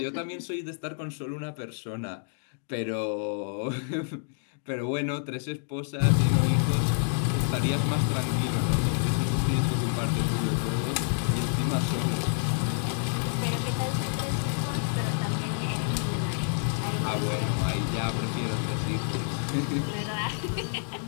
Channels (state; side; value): silent; right; digital silence